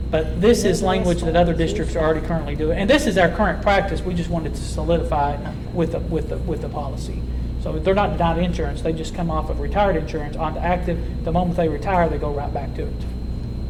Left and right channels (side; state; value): both; identical; correlation 1.00